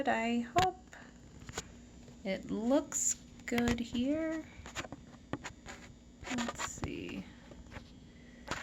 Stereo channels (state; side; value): identical; both; correlation 1.00